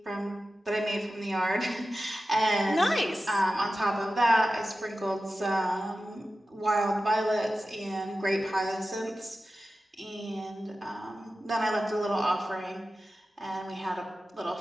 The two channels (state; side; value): normal; both; correlation 0.93